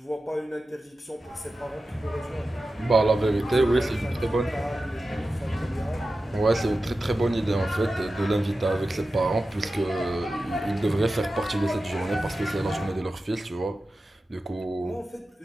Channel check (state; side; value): normal; both; correlation 0.93